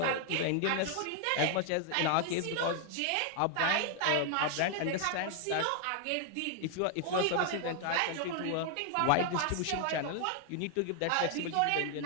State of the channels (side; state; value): both; different; correlation 0.00